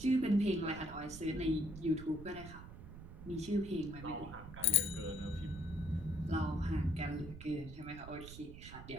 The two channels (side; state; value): right; noise; rumble, 13 dB below the sound